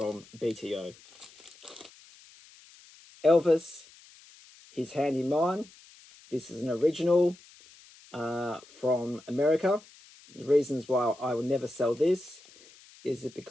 BTO. Elvis, His Hand in Mine. This is an original from America. The reasons why I will never sell this is it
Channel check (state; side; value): noise; left; hiss, 24 dB below the sound